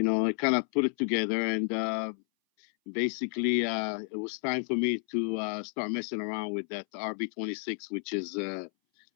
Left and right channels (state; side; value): silent; right; 57 dB below the other